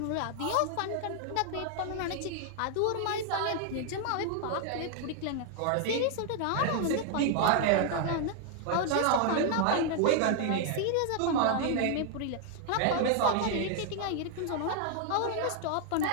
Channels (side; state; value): both; different; correlation 0.00